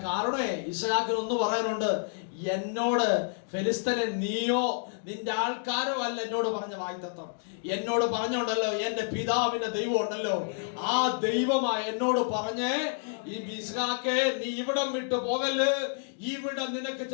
കാരണേ ഇസ്ഹാക്കിനൊന്ന് പറയാനുണ്ട്, എന്നോട് ഫെലിസ്തനെ നീയോ നിന്റെ ആൾക്കാരോ അല്ല എന്നോട് പറഞ്ഞ വാഗ്ദത്തം. എന്നോട് പറഞ്ഞുണ്ടല്ലോ, എന്റെ പിതാവിന്റെ ദൈവം ഉണ്ടല്ലോ, ആ ദൈവമാ എന്നോട് പറഞ്ഞേ, ഈ ഇസ്ഹാക്കേ നീ ഇവിടം വിട്ടു പോകല്, ഇവിടെ നിനക്ക്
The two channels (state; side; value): silent; right; digital silence